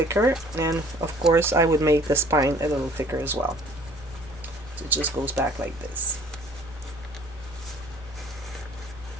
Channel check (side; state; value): both; normal; correlation 0.54